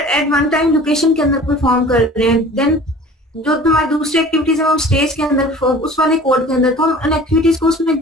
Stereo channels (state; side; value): normal; both; correlation 0.44